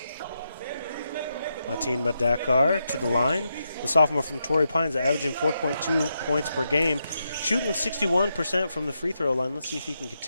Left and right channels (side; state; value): both; inverted; correlation -0.84